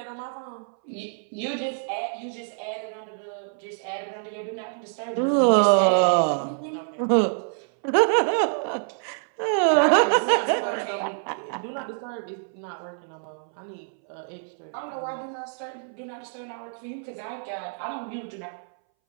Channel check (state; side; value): silent; left; 61 dB below the other